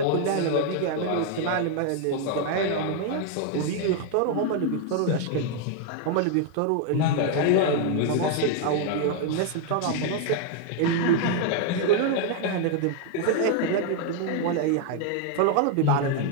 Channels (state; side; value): different; both; correlation 0.00